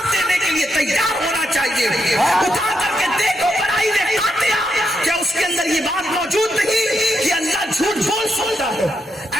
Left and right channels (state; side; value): normal; both; correlation 0.82